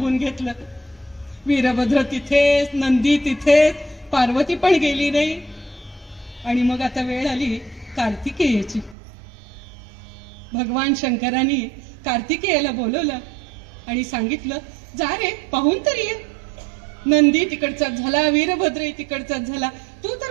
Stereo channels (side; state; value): left; drops out; at 9.0 s